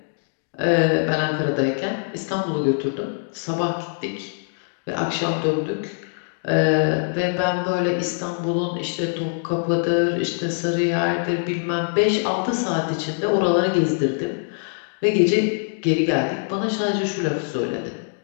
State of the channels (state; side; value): silent; right; digital silence